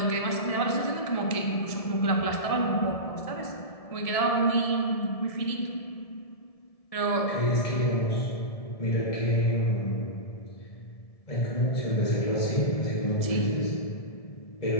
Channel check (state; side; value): late; right; 1.7 ms